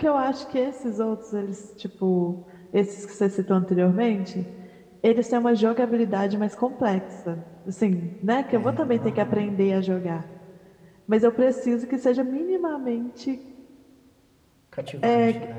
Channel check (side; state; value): both; identical; correlation 1.00